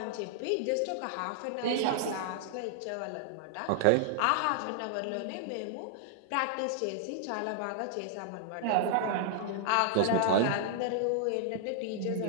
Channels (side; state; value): both; different; correlation -0.01